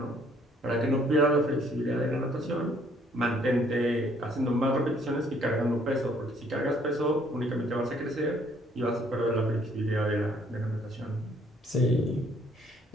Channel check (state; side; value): normal; both; correlation 0.63